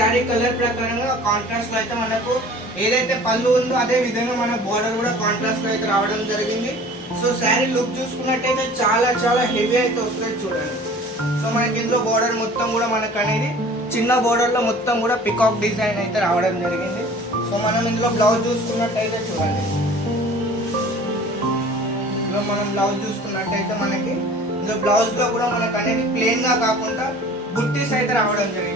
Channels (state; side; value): normal; both; correlation 0.46